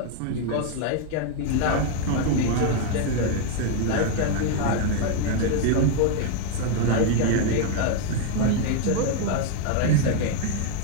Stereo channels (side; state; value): both; different; correlation 0.01